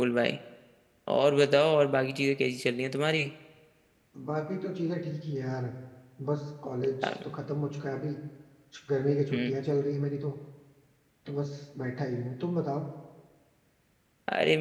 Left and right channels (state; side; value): identical; both; correlation 1.00